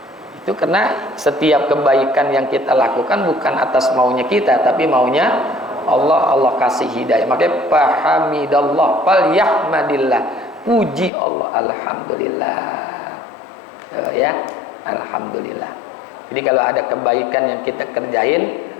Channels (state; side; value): drops out; right; at 11.1 s